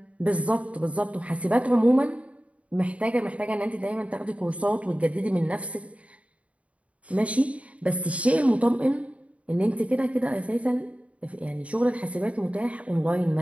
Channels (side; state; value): left; late; 0.065 ms